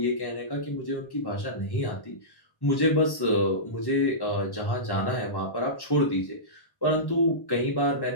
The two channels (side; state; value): right; late; 1.1 ms